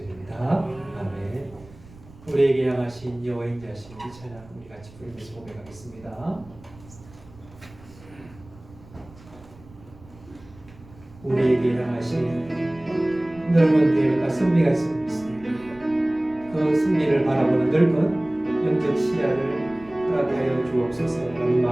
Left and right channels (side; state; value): right; noise; rumble, 22 dB below the sound